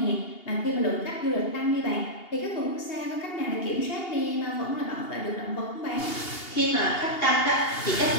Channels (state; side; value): late; right; 2.8 ms